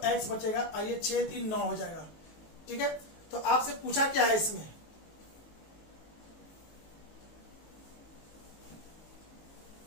x बचेगा, और ये 6 3 9 हो जाएगा, ठीक है। तो आपसे पूछा क्या है, इसमें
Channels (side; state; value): right; late; 19 ms